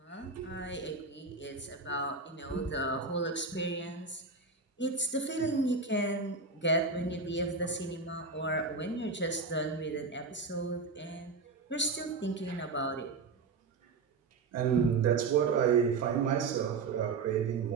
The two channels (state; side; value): quieter; left; 4.3 dB